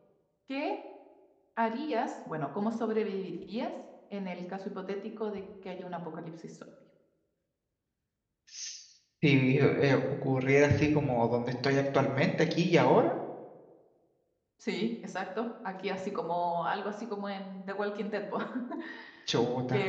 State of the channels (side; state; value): both; identical; correlation 1.00